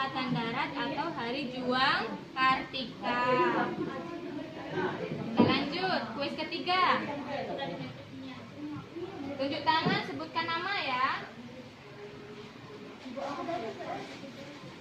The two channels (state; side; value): identical; both; correlation 1.00